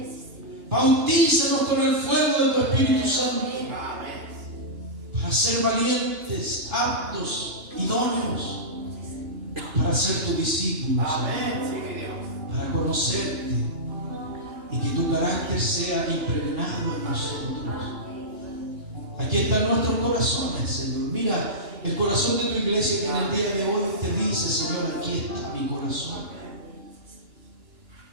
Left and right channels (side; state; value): left; late; 2.8 ms